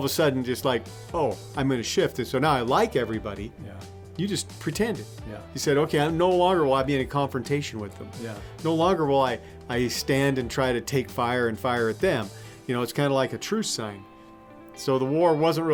a sudden just like, oh, I'm going to shift, and so now I like everybody. Yeah. You just pretended. Yeah. You said, okay, I'm no longer will I be in a confrontation with them. Yeah. No longer will I stand and try to take fire and fire at them. You know, it's kind of like a truce sign. So the war wasn't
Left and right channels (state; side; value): identical; both; correlation 1.00